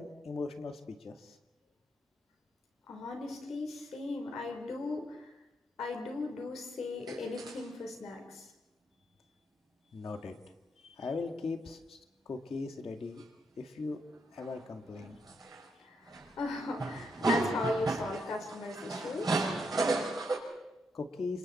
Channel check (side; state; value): both; normal; correlation 0.79